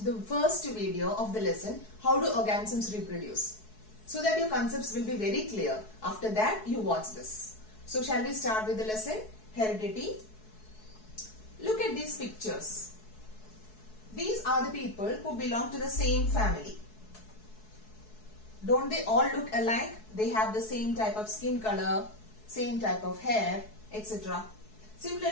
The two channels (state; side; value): late; right; 4.7 ms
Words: the first video of the lesson, How do Organisms Reproduce? So that your concepts will be very clear. After that, you watch this. So shall we start with the lesson, Heredity? Look at these pictures. These are the people who belong to the same family. Don't they all look alike? They have the same type of skin color, same type of hair, etc.